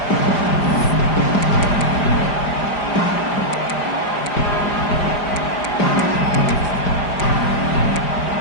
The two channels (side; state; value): right; late; 4.9 ms